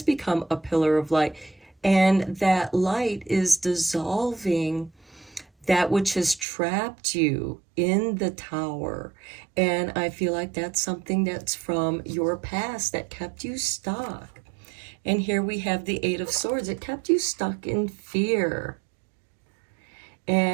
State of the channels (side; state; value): left; drops out; at 6.5 s